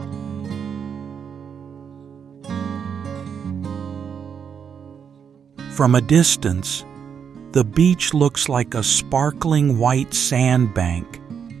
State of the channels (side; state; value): left; quieter; 7.2 dB